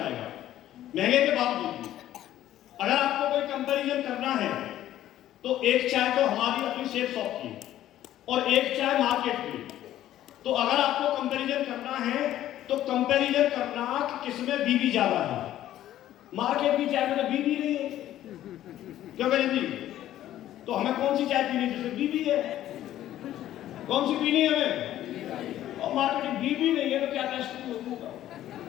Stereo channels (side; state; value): right; quieter; 12.9 dB